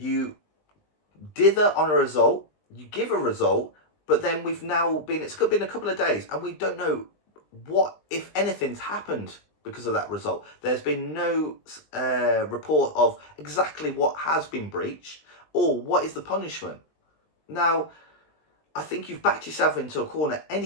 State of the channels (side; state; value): right; late; 20 ms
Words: dither on a result, you give a result, but then we've now been, it's been a couple of days, and we don't know what, if anything's happened because of that result. There's been no report of exactly what has been breached or what is the punishment. Now, I think you've backed yourself into a corner